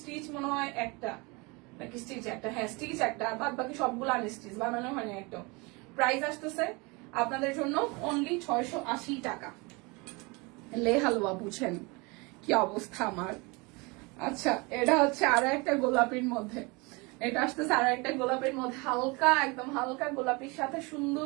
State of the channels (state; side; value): quieter; left; 27.3 dB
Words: মনে হয় একটা নাকি স্টিচ একটা, হ্যাঁ স্টিচ একটা, বাদ বাকি সবগুলো আনস্টিচ, বানানো হয়নি একটা। প্রাইস আসতেছে আপনাদের জন্য অনলি 680 টাকা। লে হালুয়া বুঝেন কি অবস্থা আমার। আচ্ছা এটা হচ্ছে আরো একটা গোলাপির মধ্যে, এটা আসতেছে আরো একটা গোলাপের মধ্যে, হালকা একদম হালকা গোলাপির সাথে